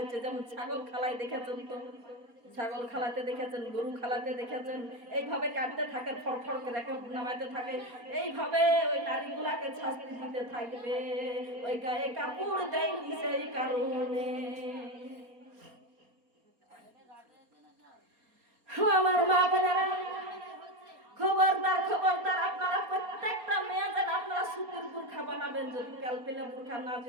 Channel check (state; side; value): late; left; 4.3 ms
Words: যেমন ছাগল খালায় দেখেছেন তো, ছাগল খালাতে দেখেছেন, গরু খালাতে দেখেছেন, এইভাবে কাটতে থাকে, ফড়ফড় করে নামাইতে থাকে, এইভাবে ওই নারীগুলাকে শাস্তি দিতে থাকবে। ওই গায়ে কাপড় দেয়নি সেই কারণে। আমার মা বোনেরা, খবরদার খবরদার, আপনারা প্রত্যেকটা মেয়ে যেন আপনারা সুতির বুরখা বানাবেন। যদি কালপেলা বুরখা না